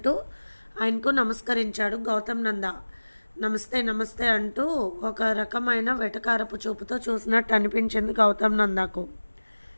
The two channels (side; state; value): both; inverted; correlation -1.00